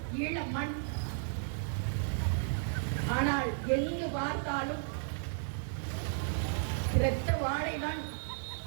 ஈழ மண். ஆனால் எங்கு பார்த்தாலும் இரத்த வாழைதான்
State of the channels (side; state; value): left; silent; 55 dB below the other